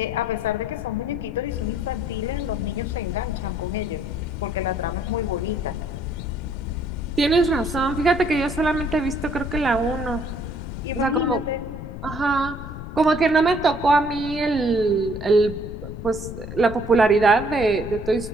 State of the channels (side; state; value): left; noise; rumble, 9 dB below the sound